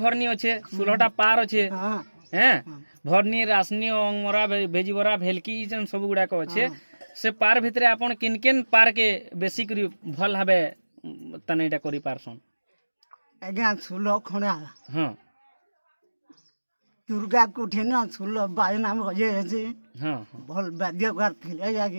अच्छे सुलहटा पार अच्छे हैं भरनी रासनी अंगमरा भेजीबरा भेलकी जन सब गुड़ाक अच्छे से पार भितरे आपन किन किन पार के बेसी करी भल हबे तनेटा करी पारसन? आज्ञा सुलह खड़ा। हाँ दुर्गा कुठिन सुलह बाजना बजे जे हाँ भल वाद्यकार थिले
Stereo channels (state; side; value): inverted; both; correlation -1.00